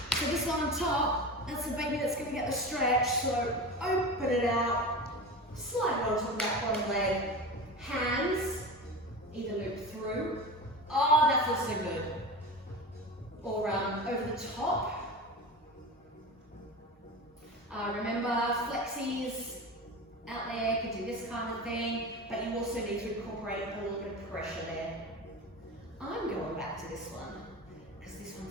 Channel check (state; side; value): normal; both; correlation 0.28